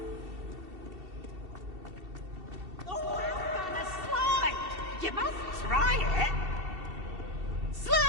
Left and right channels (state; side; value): late; left; 2.7 ms